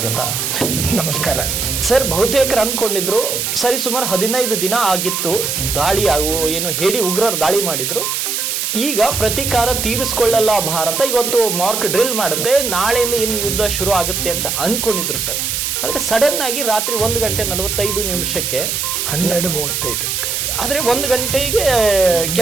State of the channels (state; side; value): noise; right; hiss, 1 dB below the sound